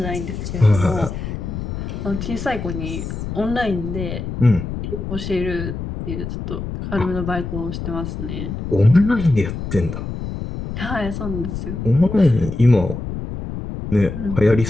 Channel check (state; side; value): noise; left; rumble, 6 dB below the sound